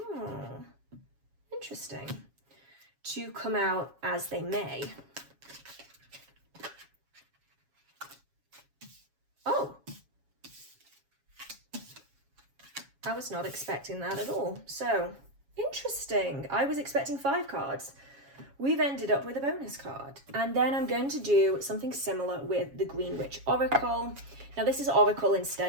interesting, to come out as they may. Oh, I was not expecting that at all. So, interesting. I was expecting 5 cards. We've ended up with a bonus card. And then I'm going to do something similar with the Green Witch Oracle. Now this is Oracle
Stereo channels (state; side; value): late; left; 7.2 ms